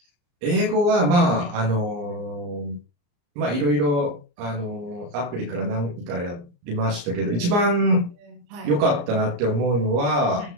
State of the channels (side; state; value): left; late; 34 ms